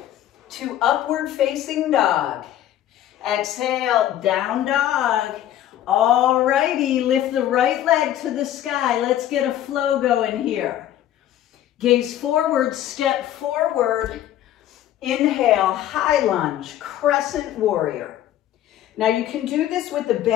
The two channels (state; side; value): quieter; right; 12.2 dB